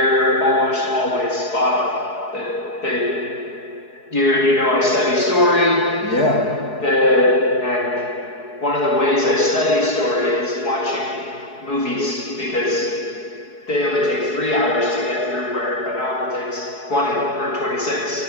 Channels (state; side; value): late; right; 4.7 ms